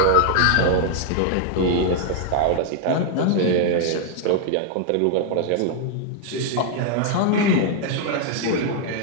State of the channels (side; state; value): both; different; correlation 0.00